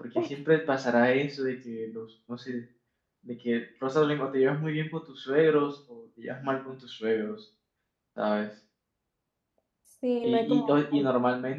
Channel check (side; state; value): both; identical; correlation 1.00